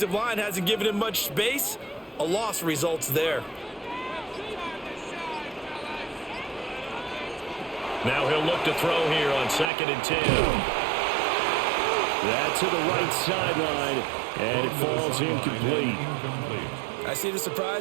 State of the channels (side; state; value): left; drops out; at 9.7 s